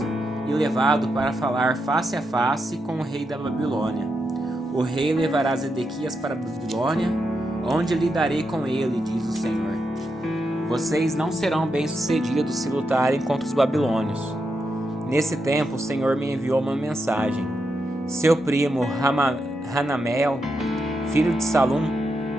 e levado para falar face a face com o rei da Babilônia. O rei levará Zedequias para a Babilônia, onde lidarei com ele, diz o Senhor. Vocês não serão bem-sucedidos se lutarem contra os babilônios. Nesse tempo, o Senhor me enviou uma mensagem. Seu primo Hanamel, filho de Salum,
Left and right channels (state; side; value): normal; both; correlation 0.84